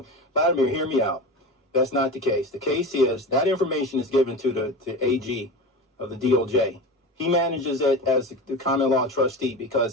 Vladimir, hear me out. That's not the case. The case is that information is given to the AG of the DOJ. He manages it as the common law trustee because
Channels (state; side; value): normal; both; correlation 0.28